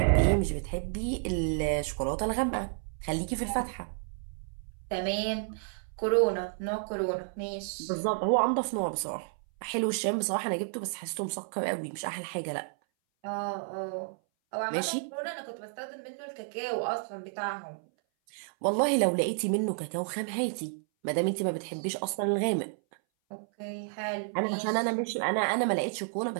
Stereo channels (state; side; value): silent; left; 57 dB below the other